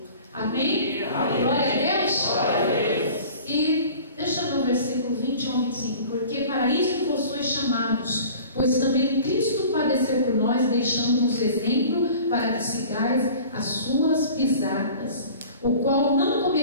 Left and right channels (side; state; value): both; inverted; correlation -0.44